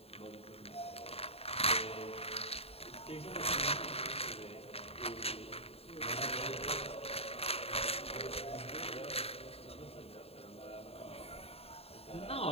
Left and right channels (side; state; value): right; late; 0.29 ms